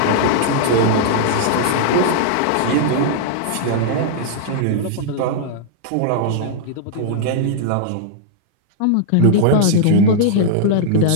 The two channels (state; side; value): different; both; correlation -0.01